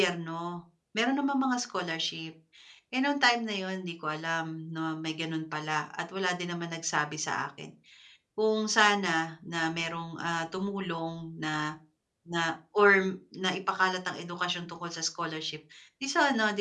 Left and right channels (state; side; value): identical; both; correlation 1.00